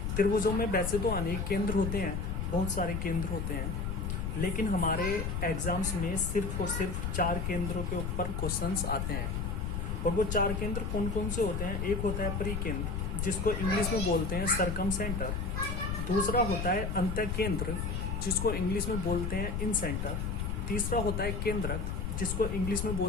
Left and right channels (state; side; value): noise; left; rumble, 2 dB below the sound